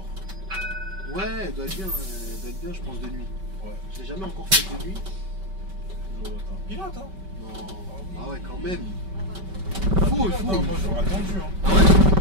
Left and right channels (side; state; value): left; late; 5.2 ms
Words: Ouais, elle doit être bien, je pense, de nuit. Ouais. Je l'ai jamais encore fait de nuit. Pilote, hein? Non. Ah oui. Ah ouais, quand même. Pilote, Faut. hein, moi, j'aurais attendu. Hein. Ah